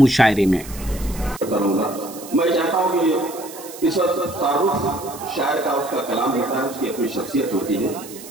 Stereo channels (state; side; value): noise; right; hiss, 15 dB below the sound